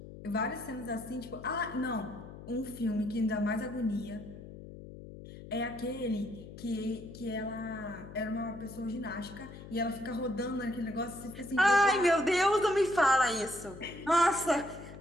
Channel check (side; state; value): left; noise; hum, 14 dB below the sound